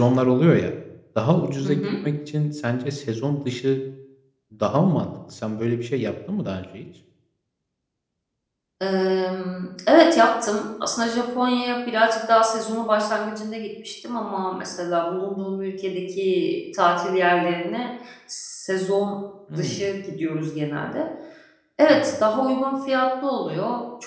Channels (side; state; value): both; identical; correlation 1.00